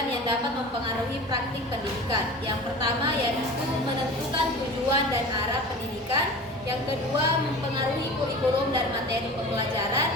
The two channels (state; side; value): normal; both; correlation 0.36